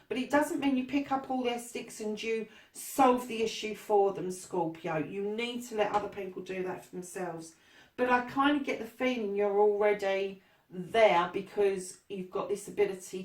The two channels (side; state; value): both; identical; correlation 1.00